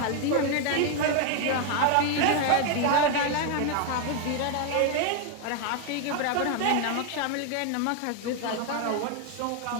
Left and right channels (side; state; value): both; different; correlation 0.01